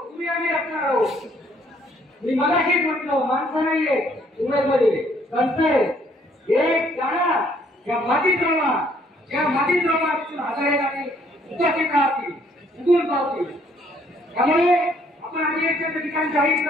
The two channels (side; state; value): both; normal; correlation 0.65